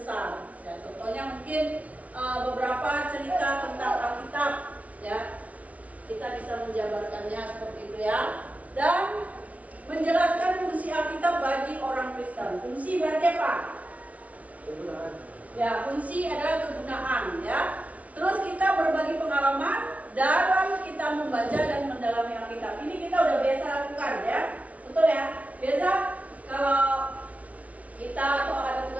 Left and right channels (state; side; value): late; left; 0.067 ms